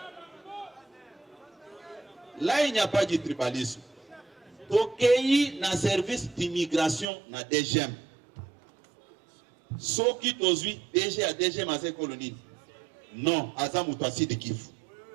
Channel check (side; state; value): left; drops out; at 7.1 s